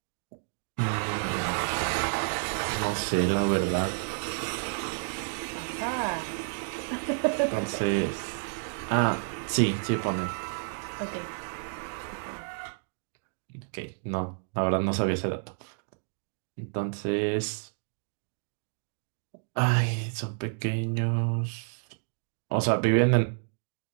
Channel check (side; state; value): left; silent; digital silence